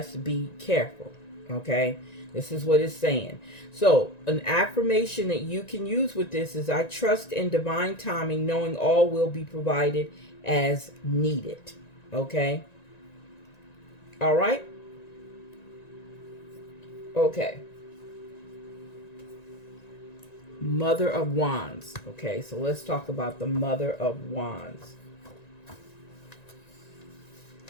be careful. Okay? This is what it's saying. So an affirmation that you can use with this is, I trust in divine timing, knowing all will be provided as needed. Okay? All right? Okay. Mother of Wands. Okay, so let's talk about the Mother of Wands.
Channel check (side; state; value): right; late; 1.9 ms